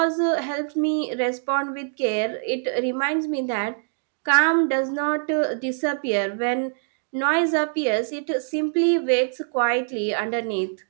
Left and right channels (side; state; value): left; silent; digital silence